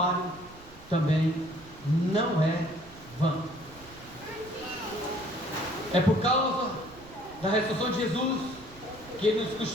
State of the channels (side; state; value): right; noise; rumble, 21 dB below the sound